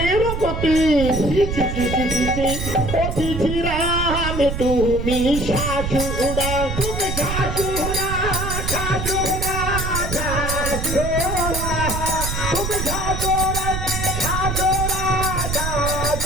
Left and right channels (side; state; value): right; noise; rumble, 4 dB below the sound